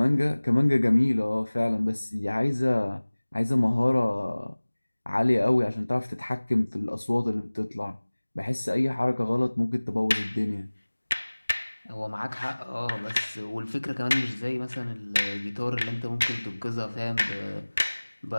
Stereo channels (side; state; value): both; inverted; correlation -1.00